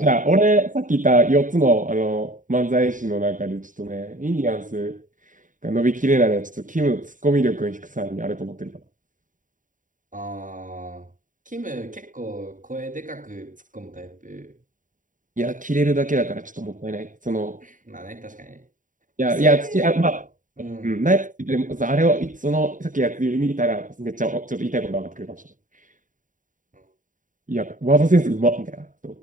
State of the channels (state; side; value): late; left; 0.38 ms